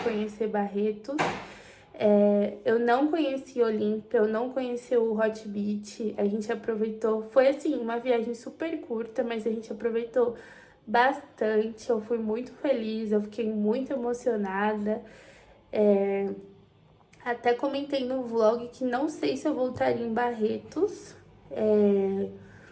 conhecer Barretos. Eu não conheci Olímpia, eu não conheci o Hot Beach. A gente aproveitou, foi assim, uma viagem super curta, mas a gente aproveitou bastante. Eu fui muito feliz, eu fiquei muito emocionada. Até comentei no vlog que não sei se eu voltaria em Barretos,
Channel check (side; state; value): both; identical; correlation 1.00